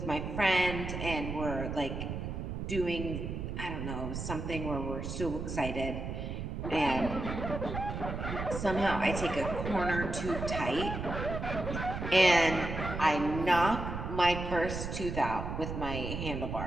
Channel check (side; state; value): right; noise; rumble, 5 dB below the sound